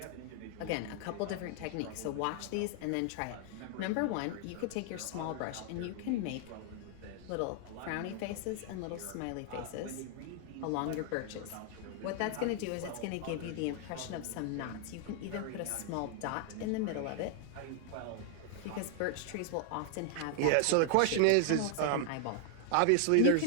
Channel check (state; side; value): different; both; correlation 0.00